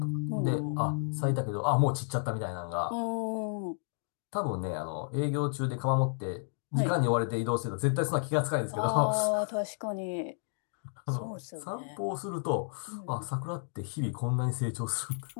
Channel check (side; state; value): right; silent; digital silence